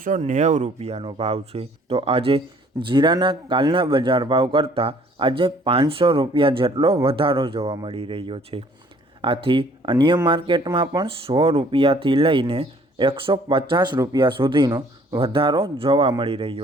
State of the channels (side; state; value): both; normal; correlation 0.58